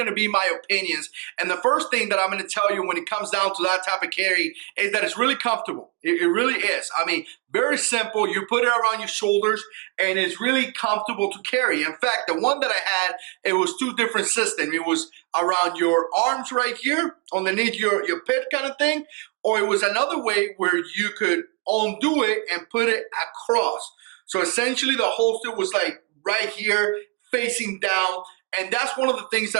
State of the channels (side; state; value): left; quieter; 27.4 dB